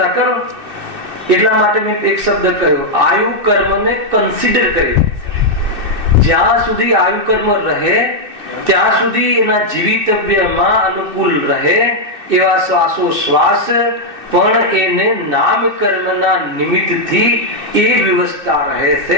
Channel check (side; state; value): left; late; 2.6 ms